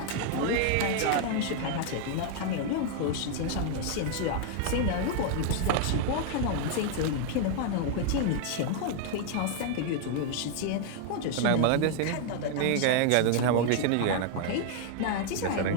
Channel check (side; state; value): both; different; correlation 0.00